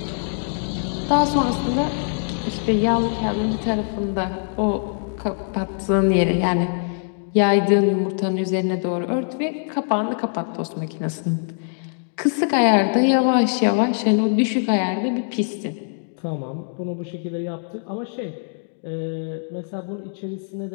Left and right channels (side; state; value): right; silent; digital silence